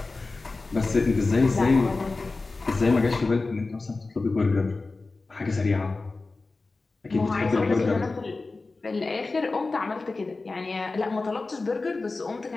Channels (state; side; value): quieter; right; 3.6 dB